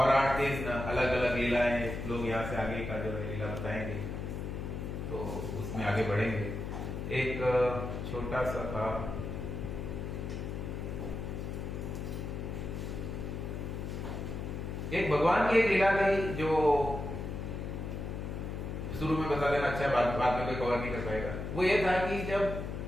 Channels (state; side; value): noise; left; hum, 5 dB below the sound